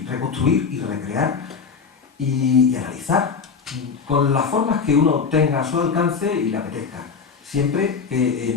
reconstruir y recrear y analizar con las formas que uno tenga a su alcance y le apetezca, siempre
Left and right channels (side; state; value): right; quieter; 5.6 dB